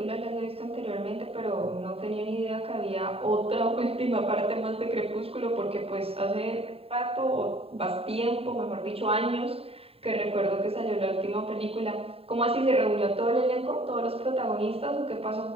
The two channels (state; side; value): late; left; 0.28 ms